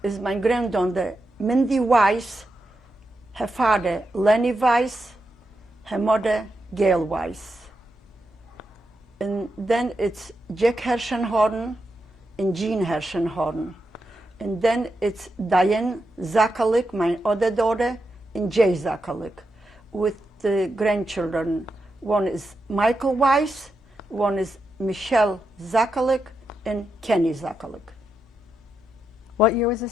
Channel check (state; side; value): normal; both; correlation 0.86